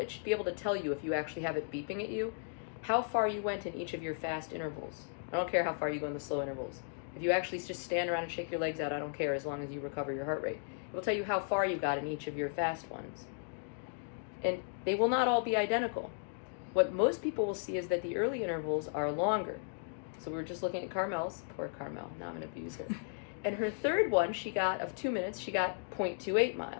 should be able to tell you, if you actually have it beeping at you, how far you went in each of your fast intervals. I don't care how far you go in the slow intervals. If you actually just stand around and shake your legs out, I don't care, as long as you recover your heart rate. It will tell you how far you got in each of your fast ones. And they will not all be identical. What most people will see is that the early intervals are longer. So we were just looking at Carmel's, poor Carmel, now I'm gonna abuse her. And her third one, she got, of 2 minutes, she got 0.28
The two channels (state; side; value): silent; right; digital silence